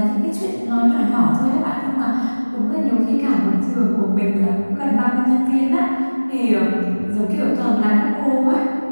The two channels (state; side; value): inverted; both; correlation -1.00